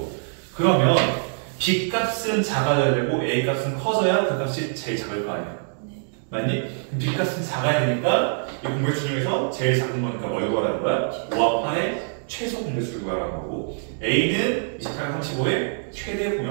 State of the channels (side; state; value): left; silent; digital silence